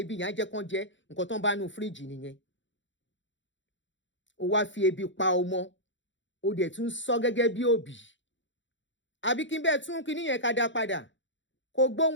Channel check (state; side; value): late; right; 0.54 ms